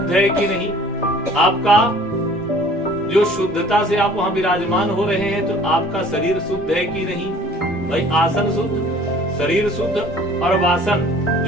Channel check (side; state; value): both; normal; correlation 0.51